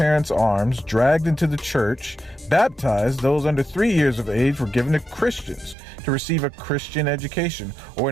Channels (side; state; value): left; drops out; at 5.8 s